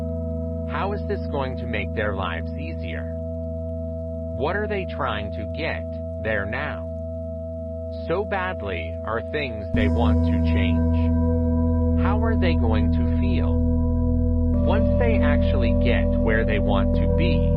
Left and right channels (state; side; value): identical; both; correlation 1.00